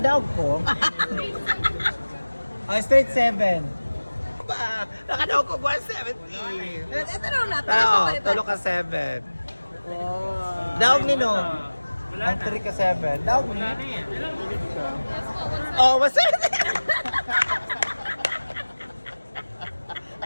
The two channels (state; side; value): inverted; both; correlation -1.00